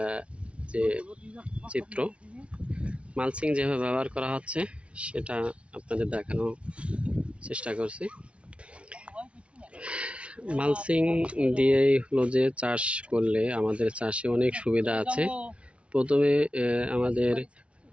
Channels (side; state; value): left; late; 0.061 ms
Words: যে চিত্র, মালচিং যেভাবে ব্যবহার করা হচ্ছে সেটা আপনাদের দেখানোর চেষ্টা করছি। মালচিং দিয়েই হলো যে চাষ করলে আমাদের চাষে অনেক সুবিধা আছে। প্রথমে আমাদের